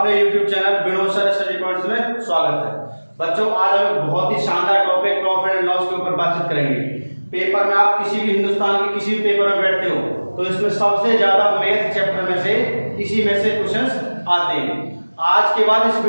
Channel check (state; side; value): inverted; both; correlation -1.00